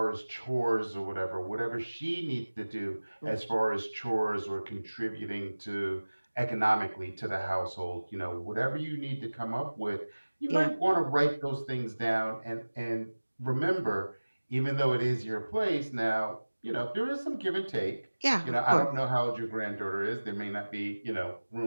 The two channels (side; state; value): both; inverted; correlation -1.00